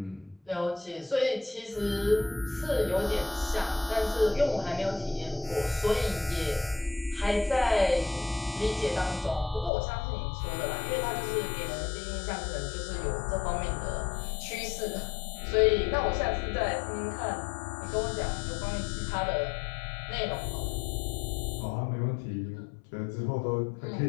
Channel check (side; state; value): right; drops out; at 9.7 s